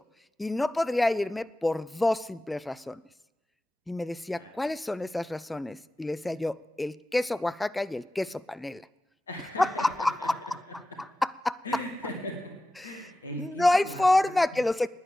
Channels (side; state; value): both; normal; correlation 0.95